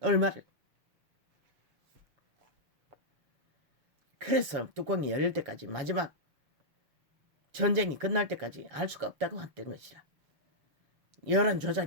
얼마를. 그래서 뚜껑이 열릴 때까지 마지막 전쟁이 끝날 때까지 알 수가 없다고 했던 것이라. 여론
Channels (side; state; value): left; late; 7.1 ms